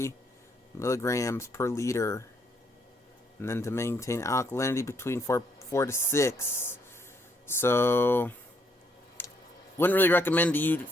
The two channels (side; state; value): both; normal; correlation 0.71